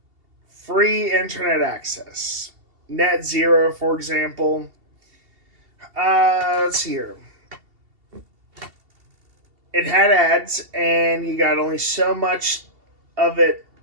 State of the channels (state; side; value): late; left; 2.7 ms